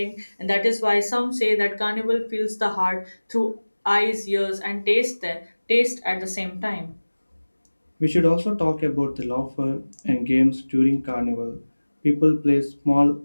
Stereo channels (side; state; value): both; inverted; correlation -1.00